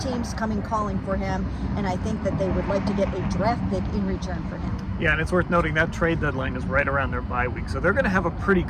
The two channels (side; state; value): both; identical; correlation 1.00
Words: coming calling for him, and I think that they would like to get a draft pick in return for him. Yeah, and it's worth noting that trade deadline is right around their bye week. So they're going to have a pretty